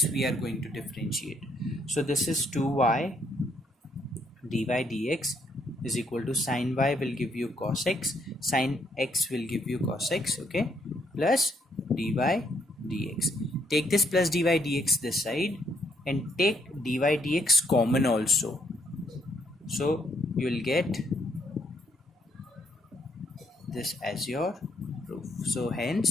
we are going to differentiate. So this is 2y dy dx is equal to sine y will give you cos x, sine x will give you cos x, okay, plus dy dx. Take this plus dy dx this side and take dy dx common also. So you will get this as your proof. So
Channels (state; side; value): normal; both; correlation 0.72